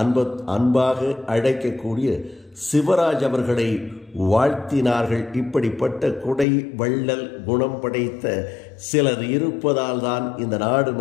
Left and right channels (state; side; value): drops out; right; at 6.5 s